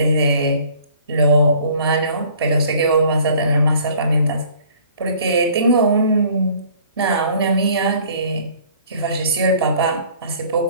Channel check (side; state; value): both; inverted; correlation -0.54